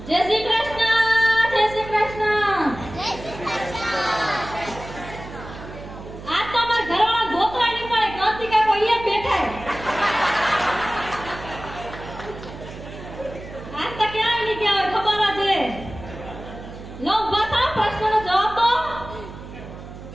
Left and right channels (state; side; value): noise; right; hum, 13 dB below the sound